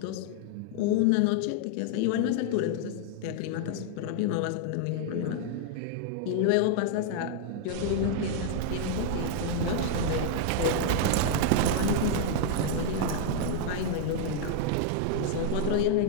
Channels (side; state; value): both; different; correlation -0.01